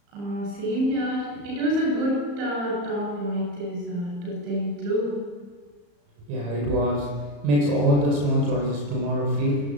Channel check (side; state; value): left; late; 35 ms